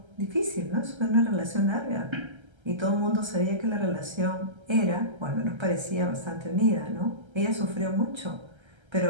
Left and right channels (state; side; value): late; left; 1.3 ms